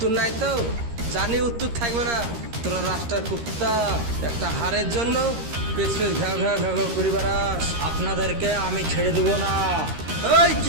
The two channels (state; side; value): late; left; 13 ms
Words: নাই তো? জানি উত্তর থাকবে না। তোরা রাস্তার কুত্তা, একটা হারের জন্য পেছনে ঘ্যাও ঘ্যাও ঘ্যাও ঘ্যাও করে বেড়াস। আপনাদেরকে আমি ছেড়ে দেবো না। এই